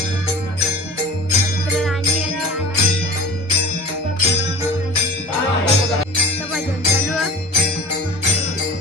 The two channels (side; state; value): both; normal; correlation 0.39